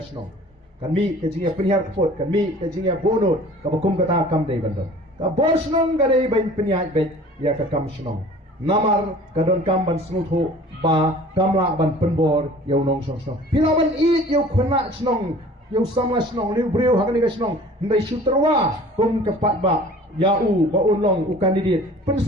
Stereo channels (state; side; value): normal; both; correlation 0.46